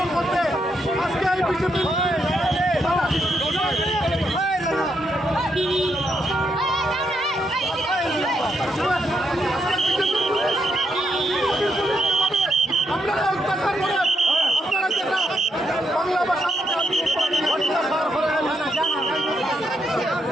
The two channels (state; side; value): normal; both; correlation 0.79